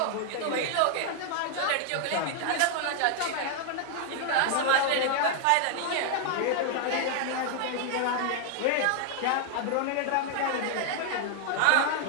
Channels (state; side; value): different; both; correlation 0.00